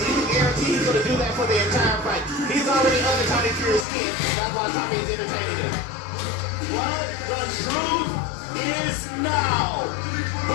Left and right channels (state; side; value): drops out; right; at 3.9 s